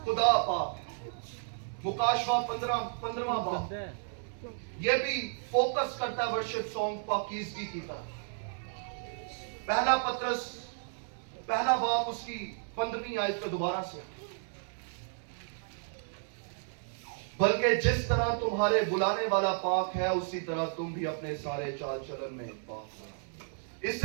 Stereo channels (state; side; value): silent; left; 56 dB below the other